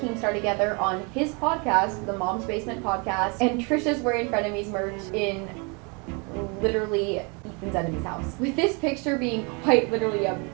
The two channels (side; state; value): left; quieter; 32.3 dB